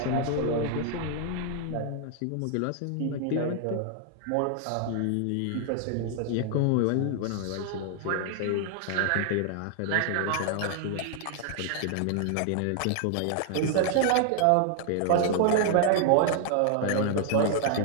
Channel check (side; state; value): both; different; correlation 0.00